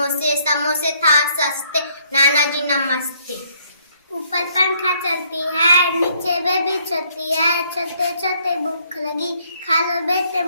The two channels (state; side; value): inverted; both; correlation -0.67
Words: समोसे था सस्ते, नाना जी नमस्ते। ऊपर पंखा चलती है, नीचे बेबी चलती है, चलते चलते भूख लगी, खा लो बेटे